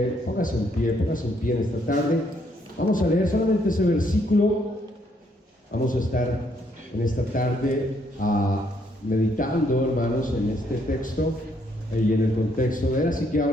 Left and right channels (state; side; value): normal; both; correlation 0.71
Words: póngase en pie en esta tarde. Vamos a leer solamente ese versículo. Vamos a estar en esta tarde meditando, hermanos, en este texto y en el contexto de él. Así que